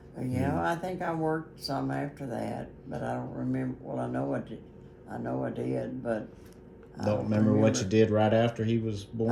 Yeah, I think I worked some after that, but I don't remember. Well, I know I did. But I Don't remember what you did right after he was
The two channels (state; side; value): identical; both; correlation 1.00